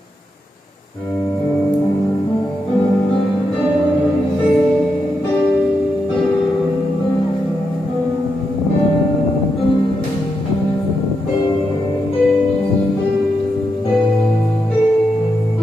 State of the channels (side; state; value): both; normal; correlation 0.84